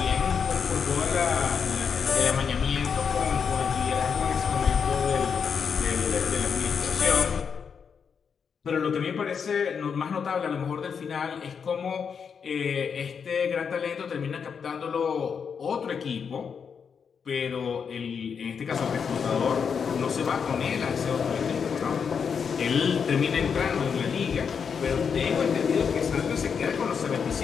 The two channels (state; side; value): quieter; right; 6.5 dB